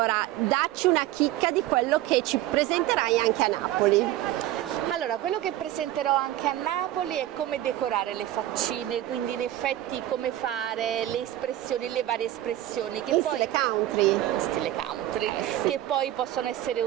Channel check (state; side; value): quieter; left; 14.0 dB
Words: dacci una chicca di quello che ci presenterai anche a Napoli. Allora, quello che presenterò anche a Napoli è come decorare le faccine, quindi in effetti come fare le espressioni, le varie espressioni che In poi stile country, che poi possono essere